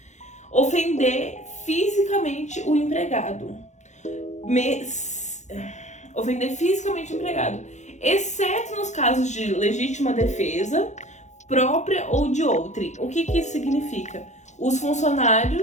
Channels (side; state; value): right; late; 0.34 ms